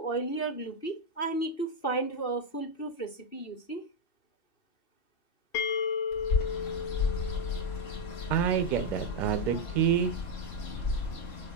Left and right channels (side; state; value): right; late; 2.7 ms